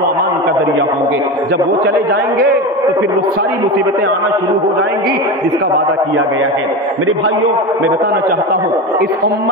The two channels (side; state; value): both; normal; correlation 0.22